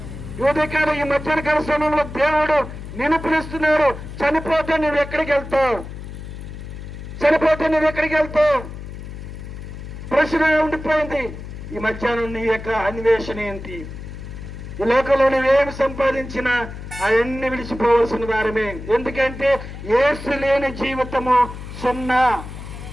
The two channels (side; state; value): left; noise; hum, 11 dB below the sound